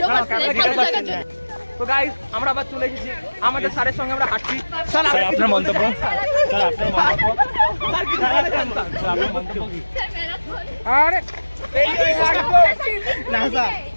তো গাইস, আমরা আবার চলে এসেছি আমাদের স্যারের সঙ্গে, আমরা হাঁটছি। স্যার আপনার মন্তব্য। স্যার কি আরে না স্যার,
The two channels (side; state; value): both; inverted; correlation -1.00